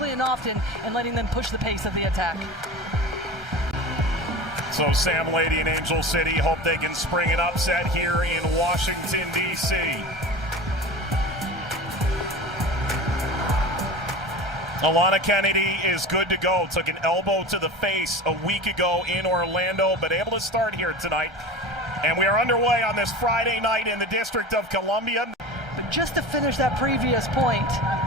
and often and letting them push the pace of the attack. So Sam Lady and Angel City hope they can spring an upset here in Washington, D.C. Alana Kennedy is good to go. Took an elbow to the face a week ago in Orlando, but able to start here tonight. And we are underway on this Friday night in the District of Columbia. But just to finish that previous point,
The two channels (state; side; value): normal; both; correlation 0.32